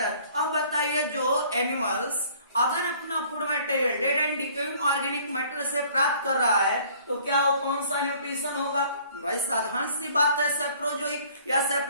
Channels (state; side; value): inverted; both; correlation -0.56